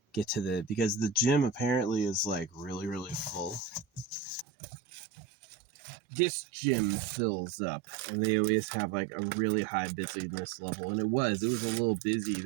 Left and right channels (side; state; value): left; drops out; at 4.5 s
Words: get to because the gym apparently is like really full. This gym fills up, and they always have like a really high busyness level, and it was a little busy